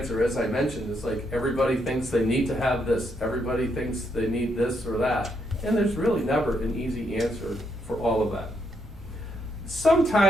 As I mentioned, it's like everybody thinks they need to have this, everybody thinks they need this or that. And there's really never an easy answer for all of that.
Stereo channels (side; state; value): both; normal; correlation 0.77